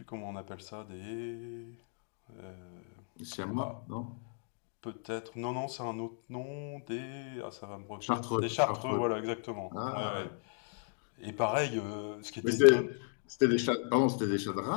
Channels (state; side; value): silent; right; 54 dB below the other